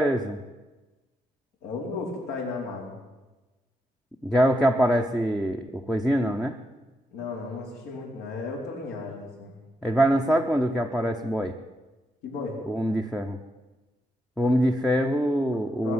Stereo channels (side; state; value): both; normal; correlation 0.83